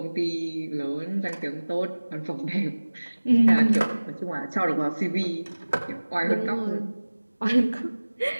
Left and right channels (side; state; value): both; inverted; correlation -1.00